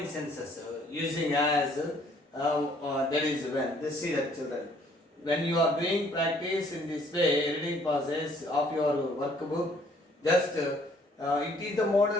sentences using as that is when this see that children. When you are doing practice in this way, editing process of your workbook, just it is the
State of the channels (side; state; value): both; normal; correlation 0.62